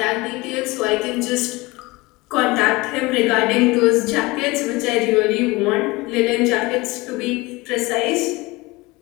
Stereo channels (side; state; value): right; quieter; 22.5 dB